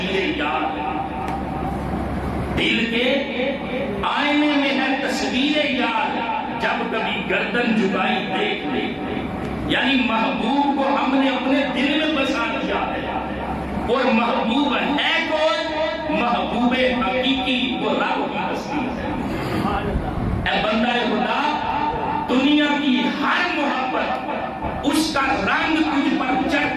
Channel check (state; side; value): identical; both; correlation 1.00